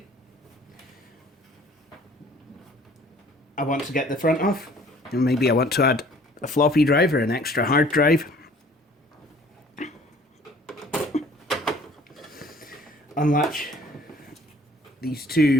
I want to get the front off, and maybe I want to add a floppy drive or an extra hard drive. Unlatch these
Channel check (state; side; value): normal; both; correlation 0.54